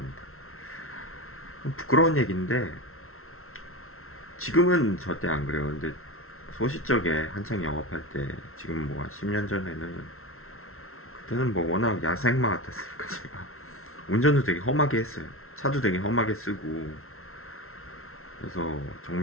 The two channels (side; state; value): right; late; 0.62 ms